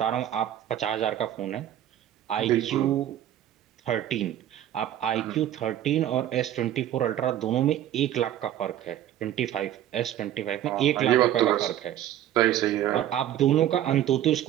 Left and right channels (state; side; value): quieter; left; 11.9 dB